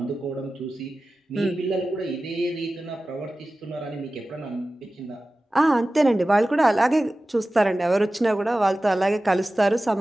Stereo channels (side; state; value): both; normal; correlation 0.96